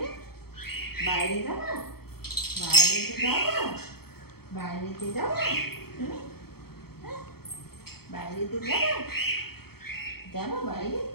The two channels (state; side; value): late; right; 0.95 ms